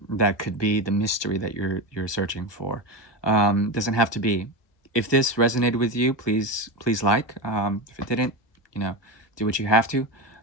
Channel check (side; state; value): right; late; 1.2 ms